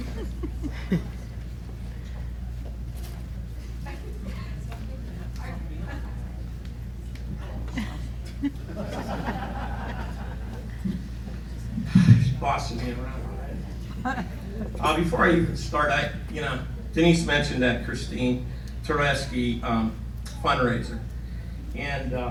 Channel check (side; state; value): both; identical; correlation 1.00